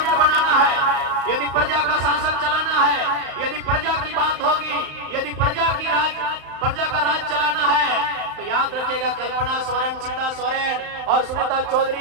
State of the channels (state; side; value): late; left; 35 ms